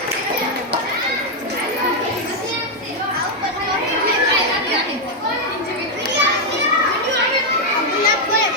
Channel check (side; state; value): both; normal; correlation 0.01